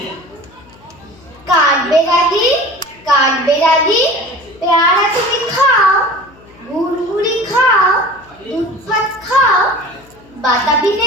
কাঠবেড়ালি, কাঠবেড়ালি, পেয়ারা তুমি খাও, গুড়গুড়ি খাও, দুধ ভাত খাও, বাতাবি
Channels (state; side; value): noise; left; hum, 26 dB below the sound